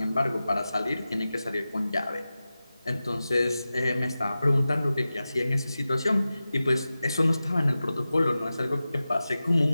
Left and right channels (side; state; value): both; inverted; correlation -0.95